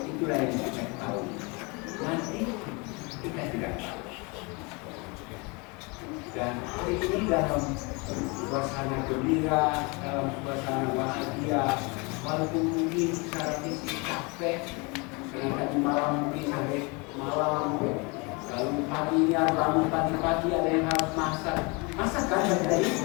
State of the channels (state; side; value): quieter; right; 29.2 dB